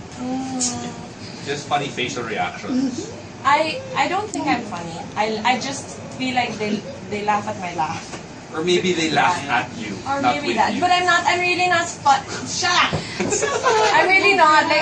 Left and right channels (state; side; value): identical; both; correlation 1.00